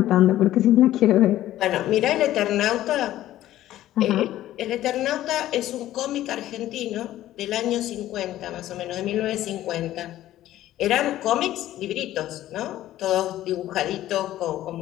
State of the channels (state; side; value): quieter; right; 13.8 dB